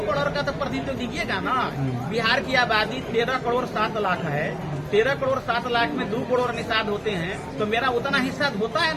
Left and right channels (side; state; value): both; identical; correlation 1.00